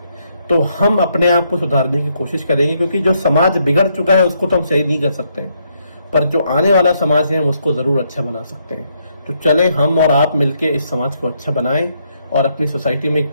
तो हम अपने आप को सुधारने की कोशिश करेंगे, क्योंकि जो समाज बिगड़ चुका है उसको तो हम सही नहीं कर सकते हैं, पर जो आने वाला समाज है उसको जरूर अच्छा बना सकते हैं। तो चले हम और आप मिलके इस समाज को अच्छा बनाएं और अपनी सोसाइटी में एक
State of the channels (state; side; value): inverted; both; correlation -0.75